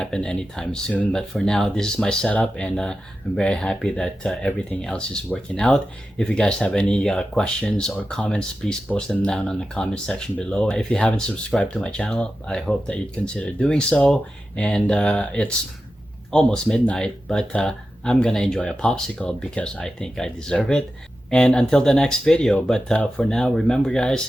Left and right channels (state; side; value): normal; both; correlation 0.92